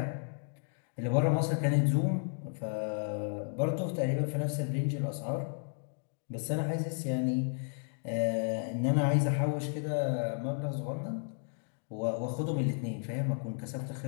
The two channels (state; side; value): silent; right; 56 dB below the other